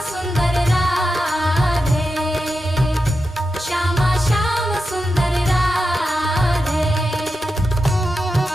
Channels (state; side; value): normal; both; correlation 0.89